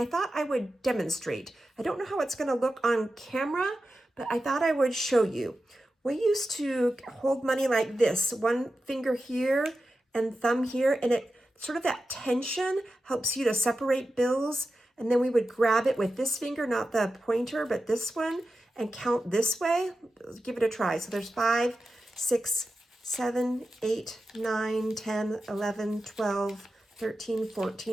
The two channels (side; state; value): both; normal; correlation 0.92